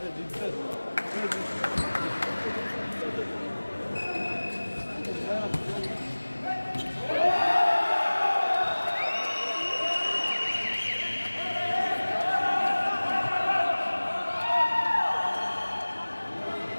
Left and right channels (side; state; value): both; inverted; correlation -1.00